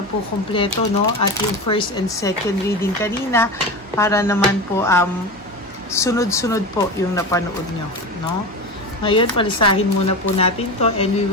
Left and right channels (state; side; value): normal; both; correlation 0.24